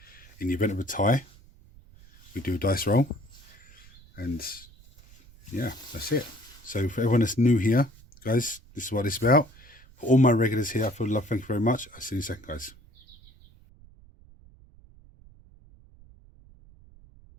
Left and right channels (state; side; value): noise; right; rumble, 24 dB below the sound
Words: In the event of a tie, we do a dice roll, and yeah, that's it. So for everyone that's new here, guys, this is what it's about. For all my regulars here, I feel love, thank you very much. I'll see you in a second, guys.